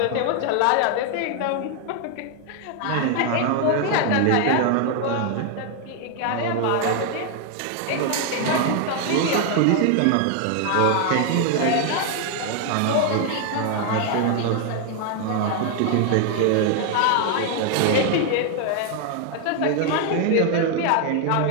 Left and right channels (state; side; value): different; both; correlation 0.00